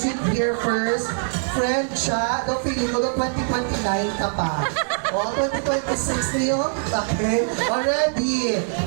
here first. Friend siya, no, feeling mo, no, 2029 ka pa. O, 2026 niyo, okay? Already,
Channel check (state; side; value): silent; left; digital silence